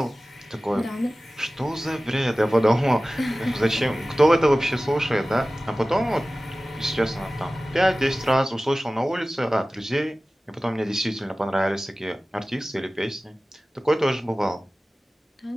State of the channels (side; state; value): both; normal; correlation 0.97